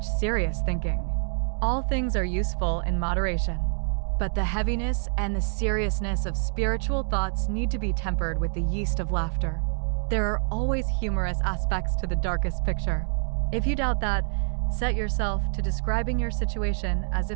serious thinking. All things are useful in moderation, but the heaviness and the seriousness of spiritual thoughts need to be tempered with the yeast of laughter. There are always humorous aspects to the darkest picture. If you doubt that, set yourself to describing your situation as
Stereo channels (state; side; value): silent; left; digital silence